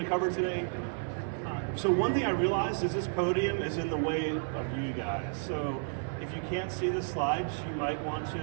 to cover today. So one thing I realized is this podium is in the way of you guys. So if you can't see the slides, you might want to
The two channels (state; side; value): silent; left; 57 dB below the other